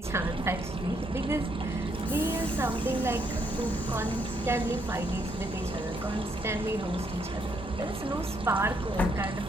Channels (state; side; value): normal; both; correlation 0.73